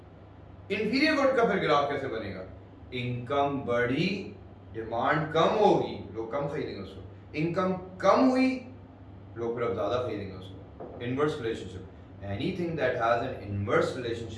Inferior good का फिर ग्राफ कैसे बनेगा? इनकम बढ़ी, डिमांड कम होगी, लोग कम खरीदेंगे उसको. इनकम कम हुई, लोग फिर अब ज्यादा खरीदेंगे उसको. Inverse relationship. Anything that has an inverse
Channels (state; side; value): identical; both; correlation 1.00